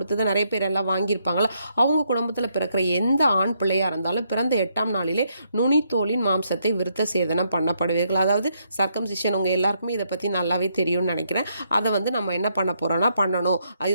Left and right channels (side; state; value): both; inverted; correlation -0.75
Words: நிறைய பேர் எல்லாம் வாங்கியிருப்பாங்களா, அவங்க குடும்பத்தில் பிறக்கிற எந்த ஆண் பிள்ளையாக இருந்தாலும் பிறந்த 8ஆம் நாளிலே நுனித்தோலின் மாம்சத்தை விருத்த சேதனம் பண்ணப்படுவீர்கள். அதாவது சர்க்கம்சிஷன். உங்கள் எல்லாருக்குமே இதை பற்றி நல்லாவே தெரியும்னு நினைக்கிறேன். அதை நம்ம என்ன பண்ண போகிறோன்னா பண்ணணும்.